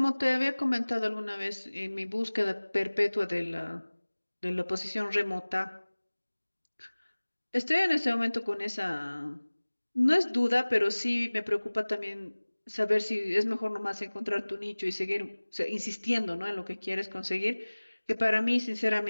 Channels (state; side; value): inverted; both; correlation -1.00